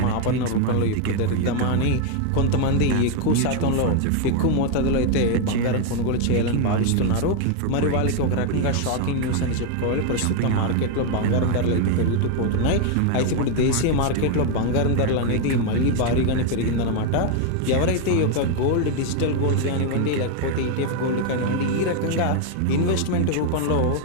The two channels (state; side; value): different; both; correlation 0.01